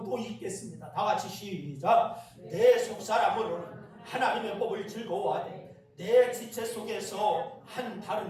또 읽겠습니다. 다 같이 시작. 내 속사람으로는 하나님의 법을 즐거워하되 내 지체 속에서 한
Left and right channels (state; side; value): identical; both; correlation 1.00